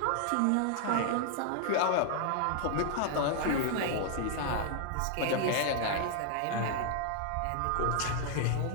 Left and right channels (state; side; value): different; both; correlation 0.00